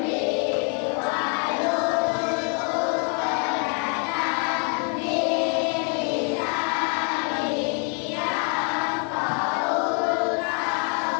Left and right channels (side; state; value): right; quieter; 39.7 dB